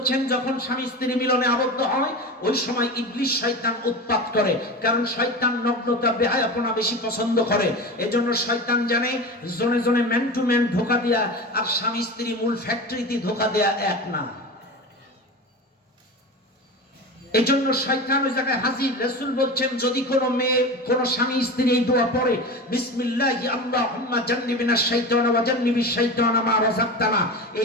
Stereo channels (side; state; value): both; normal; correlation 0.28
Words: যখন স্বামী স্ত্রী মিলনে আবদ্ধ হয় ওই সময় ইবলিস শয়তান উৎপাত করে, কারণ শয়তান নগ্নতা বেহায়াপনা বেশি পছন্দ করে। এজন্য শয়তান জানে জনে জনে ম্যান টু ম্যান ধোঁকা দেয়া আর স্বামী স্ত্রী মূল ফ্যাক্টরিতে ধোঁকা দেয়া এক না। এজন্য শয়তান ওই জায়গায় হাজির। রাসূল বলছেন যদি কোনো মেয়ে, কোনো স্বামী স্ত্রী এই দোয়া পড়ে বিসমিল্লাহি আল্লাহুম্মা জান্নিবিনাশ শাইতানা ওয়া জান্নিবিশ শাইতানা মা রাযাকতানা,